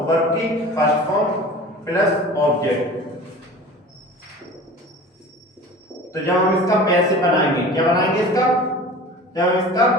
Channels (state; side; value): normal; both; correlation 0.39